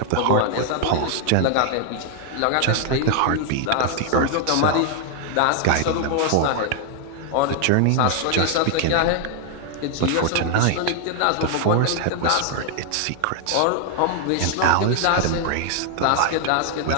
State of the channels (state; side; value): different; both; correlation 0.00